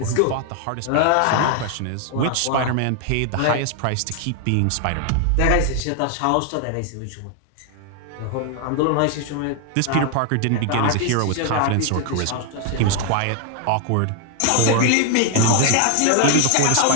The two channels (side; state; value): both; different; correlation 0.00